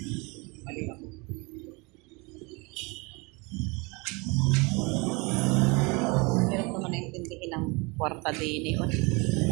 Mali ako. Hirap naman naintindihin ng kwarta din eh.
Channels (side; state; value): left; quieter; 28.0 dB